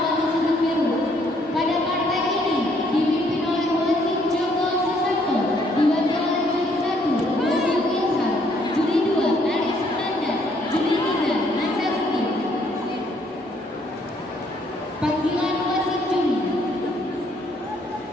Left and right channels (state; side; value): normal; both; correlation 0.67